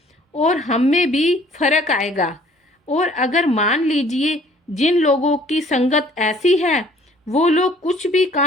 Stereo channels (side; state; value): both; normal; correlation 0.56